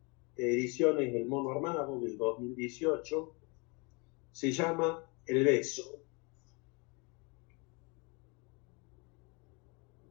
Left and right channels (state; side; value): quieter; right; 30.7 dB